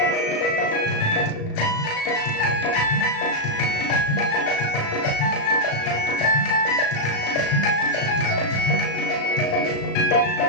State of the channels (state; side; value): late; right; 36 ms